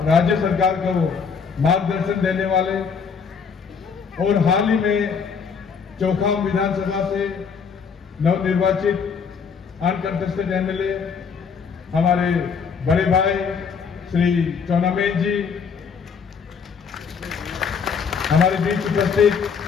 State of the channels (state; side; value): quieter; right; 6.0 dB